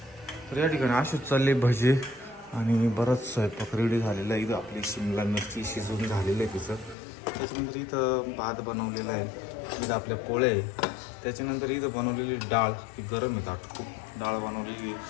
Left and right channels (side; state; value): right; drops out; at 7.0 s